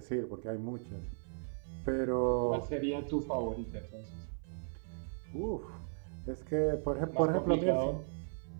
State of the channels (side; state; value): left; silent; 53 dB below the other